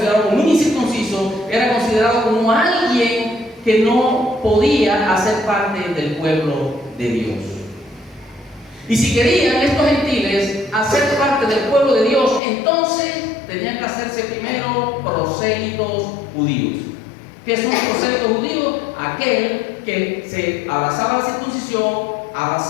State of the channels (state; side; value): drops out; right; at 12.4 s